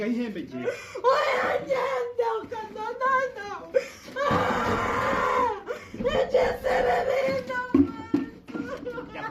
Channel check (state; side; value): identical; both; correlation 1.00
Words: ihembe ngiye. Oya nyenda ukanonana. Ejesere bino.